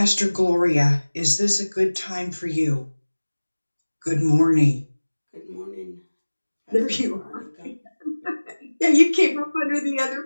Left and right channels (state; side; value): inverted; both; correlation -1.00